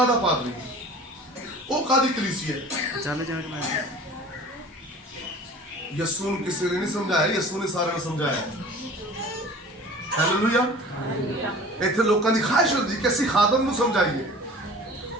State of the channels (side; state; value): both; normal; correlation 0.43